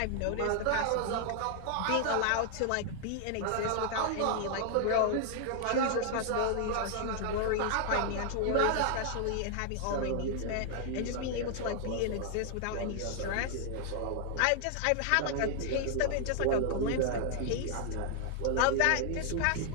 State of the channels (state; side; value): different; both; correlation 0.00